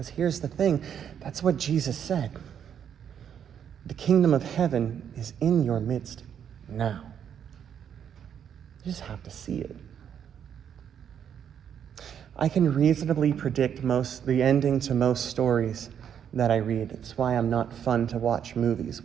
here's the thing, that's what Jesus said. The kingdom of heaven is in your midst now. You just have to see it. I can reasonably predict the ending to most stories that I read. It's why I'm not fun to watch movies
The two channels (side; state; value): left; quieter; 8.6 dB